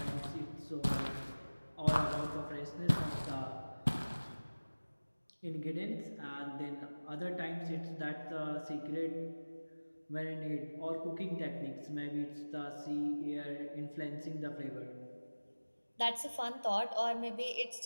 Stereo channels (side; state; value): both; inverted; correlation -1.00